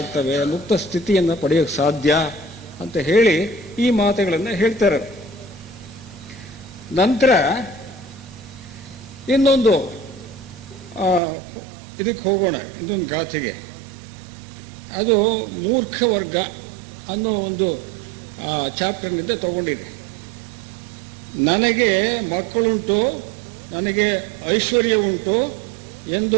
ಮುಕ್ತ ಸ್ಥಿತಿಯನ್ನು ಪಡೆಯೋಕ್ಕೆ ಸಾಧ್ಯ ಅಂತ ಹೇಳಿ ಈ ಮಾತುಗಳನ್ನು ಹೇಳ್ತಾರೆ. ನಂತರ ಇನ್ನೊಂದು ಇದಕ್ಕೆ ಹೋಗೋಣ, ಇನ್ನೊಂದು ಗಾಥೆಗೆ. ಅದು ಮೂರ್ಖ ವರ್ಗ ಅನ್ನೋ ಒಂದು ಚಾಪ್ಟರ್ನಿಂದ ತಗೊಂಡಿದೆ. ನನಗೆ ಮಕ್ಕಳುಂಟು, ನನಗೆ ಐಶ್ವರ್ಯ ಉಂಟು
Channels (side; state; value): left; drops out; at 11.2 s